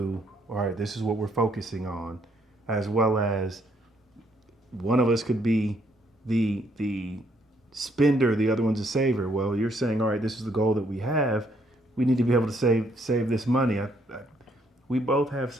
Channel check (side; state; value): both; normal; correlation 0.70